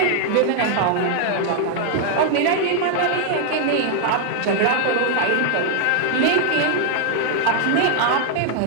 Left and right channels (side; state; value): both; different; correlation 0.00